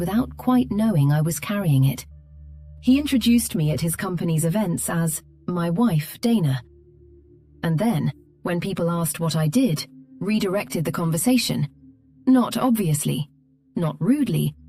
quite knowing I was carrying it. He introduced me at his company's events as my wife, Dana. And then, when people asked what I did, redirected the conversation, not obviously, not rudely,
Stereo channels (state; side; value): identical; both; correlation 1.00